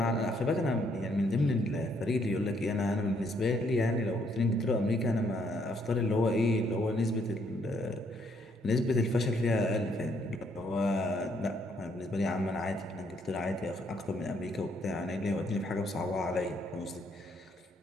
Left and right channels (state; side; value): normal; both; correlation 0.70